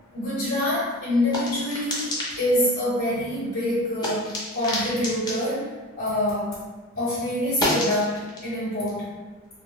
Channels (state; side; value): normal; both; correlation 0.31